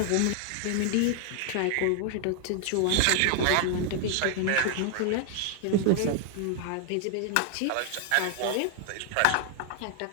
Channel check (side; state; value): both; different; correlation 0.00